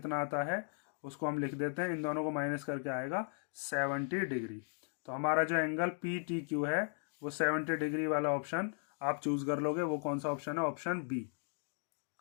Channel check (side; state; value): right; silent; 53 dB below the other